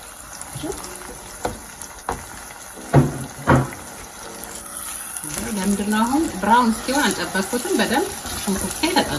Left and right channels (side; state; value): both; identical; correlation 1.00